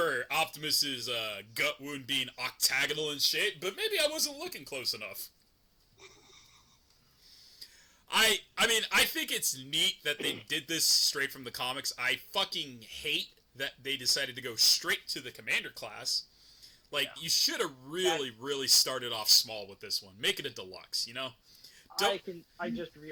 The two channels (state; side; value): identical; both; correlation 1.00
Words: Optimus's gut wound being octagonal in shape, but maybe I wasn't looking close enough. I mean, I think it's neat that they did this straight from the comics. I fucking hate that they decided to go straight to the Commander class. You should have really started off small with this one. Make it a deluxe, you know? I just